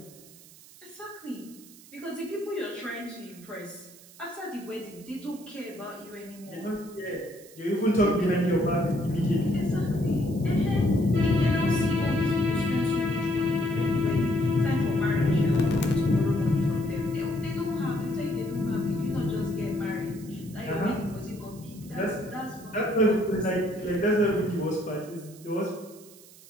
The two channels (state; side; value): noise; right; hiss, 22 dB below the sound